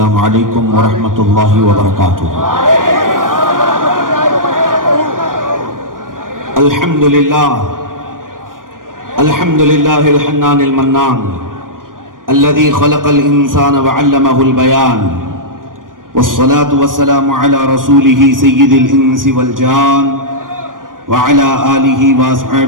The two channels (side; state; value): left; late; 0.90 ms